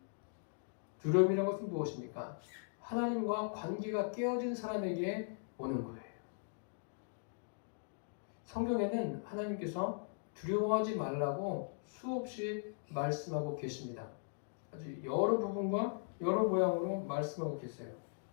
두려움이라는 것은 무엇입니까? 하나님과 관계가 깨어진 사람에게 오는 거예요. 성경에는 하나님께서 두려워하지 말라고 수없이 말씀하고 계십니다. 아주 여러 부분과 여러 모양으로 말씀하고 계세요.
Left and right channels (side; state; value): right; silent; digital silence